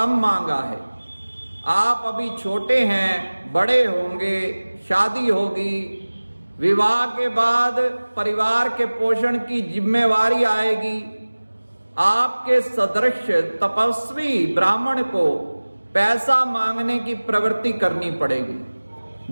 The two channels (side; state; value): both; inverted; correlation -1.00